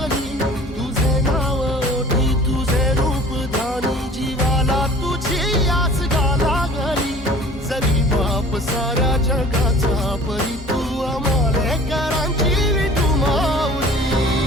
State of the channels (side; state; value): both; normal; correlation 0.46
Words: तुझे नाव ओठी तुझे रूप ध्यानी जीवाला तुझी आस गा लागली जरी बाप साऱ्या जगाचा परी